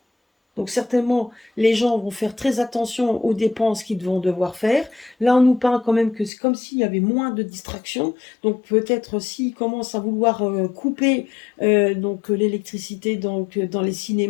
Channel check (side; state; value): right; drops out; at 6.3 s